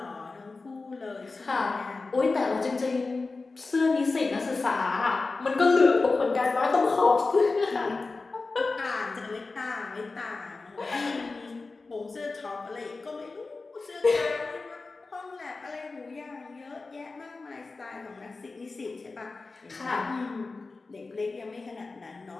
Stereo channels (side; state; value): right; quieter; 3.8 dB